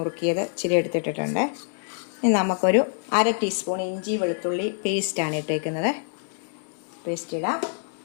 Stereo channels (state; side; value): silent; right; digital silence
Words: ഇച്ചിരി എടുത്തിട്ടിട്ടുണ്ട്. ഇനി നമുക്കൊരു 1/2 ടീസ്പൂൺ ഇഞ്ചി വെളുത്തുള്ളി പേസ്റ്റാണ് ഇട്ടേക്കുന്നത്. പേസ്റ്റ് ഇടാം.